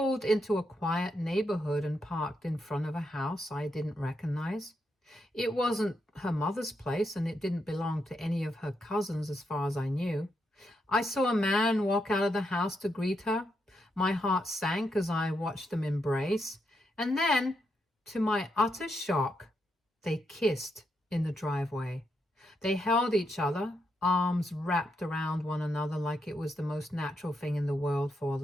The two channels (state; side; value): normal; both; correlation 0.81